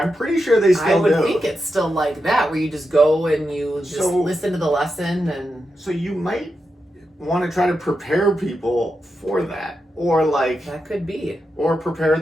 pretty sure they still do. I would think it's still like that, where you just go and you just So- listen to the lesson and... So you might want to try to prepare people for that. Or, like... That could be. Or prepare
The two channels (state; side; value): normal; both; correlation 0.88